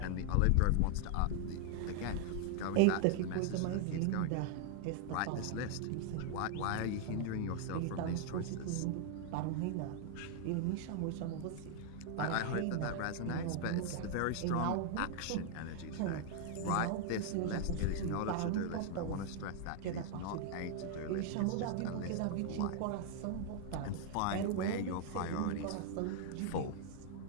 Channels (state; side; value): different; both; correlation 0.00